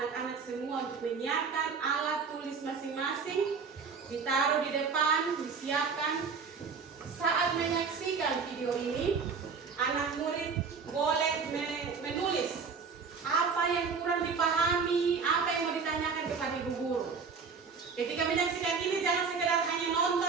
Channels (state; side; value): quieter; left; 5.4 dB